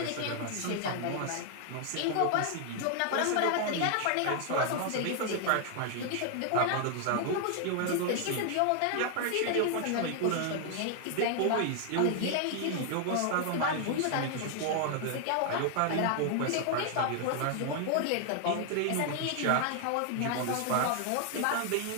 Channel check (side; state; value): both; different; correlation 0.00